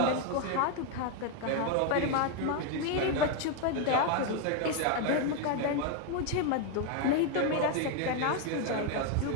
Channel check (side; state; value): both; different; correlation 0.01